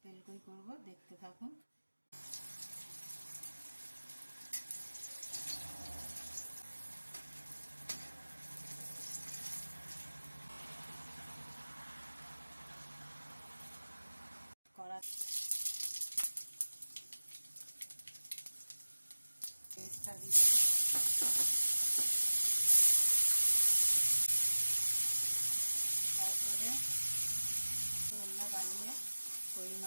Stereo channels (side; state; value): both; inverted; correlation -1.00